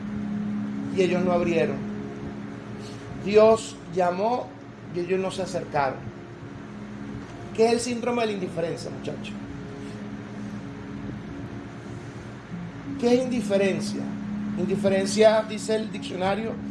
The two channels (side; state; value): both; identical; correlation 1.00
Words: y ellos no abrieron. Dios llamó y ellos no se acercaron. ¿Qué es el síndrome de la indiferencia, muchachos? ¿Qué es indiferencia? Indiferencia, dice el diccionario,